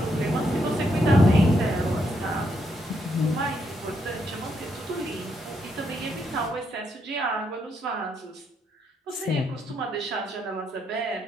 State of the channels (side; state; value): both; normal; correlation 0.77